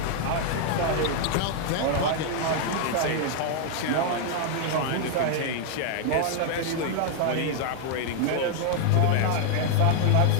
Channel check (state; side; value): different; both; correlation 0.00